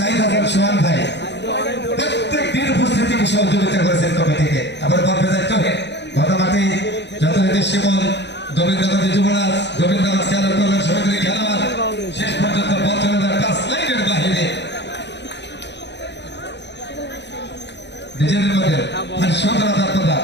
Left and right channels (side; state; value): right; late; 0.51 ms